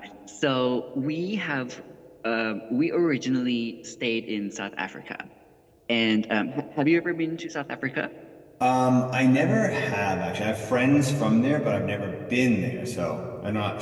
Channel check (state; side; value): identical; both; correlation 1.00